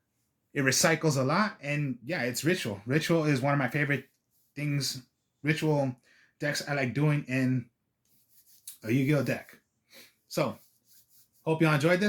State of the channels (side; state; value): both; identical; correlation 1.00